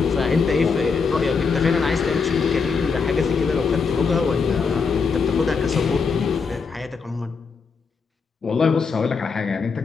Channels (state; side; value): quieter; right; 5.2 dB